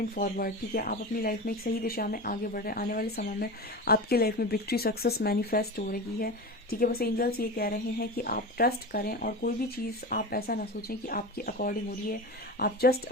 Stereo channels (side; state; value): both; normal; correlation 0.27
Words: फॉरवर्ड, ठीक है, आप अपनी लाइफ में एक सही दिशा में आगे बढ़ रहे हैं। आने वाले समय में आपकी लाइफ में विक्ट्री, सक्सेस मैनिफेस्ट हो रही है, ठीक है। बस एंजल्स ये कह रहे हैं कि आप ट्रस्ट करें और कोई भी चीज़ आप ऐसा ना सोचें कि आपकी अकॉर्डिंग हो रही है। आप जस्ट